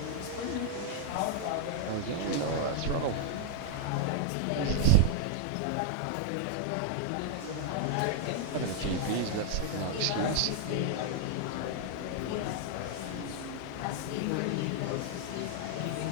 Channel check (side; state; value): both; different; correlation -0.01